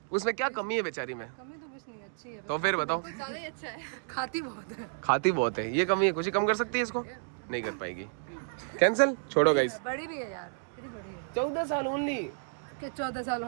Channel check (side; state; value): left; silent; digital silence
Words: उसमें क्या कमी है बेचारी में, कमी तो कुछ नहीं, अच्छी है, तो फिर बताओ। ज्यादा ही अच्छा है, खाती बहुत है। खाती बहुत है, ये कमी है। खुशी कम कर सकती है इसको? नहीं कर पाएगी, कैंसिल। छोड़ो गाइस। बड़ी भी है यार, कितनी बड़ी है? 14 साल ओनली। क्या 14 साल